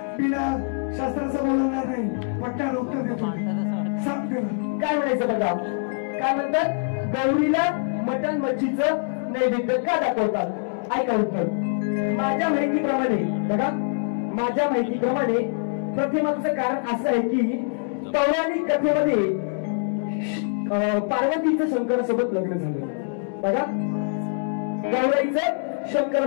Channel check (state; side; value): silent; right; digital silence